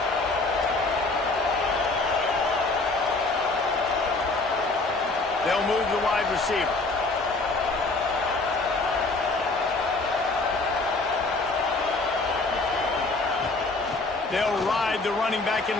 They'll move the wide receiver. They'll ride the running back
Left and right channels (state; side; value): quieter; right; 3.4 dB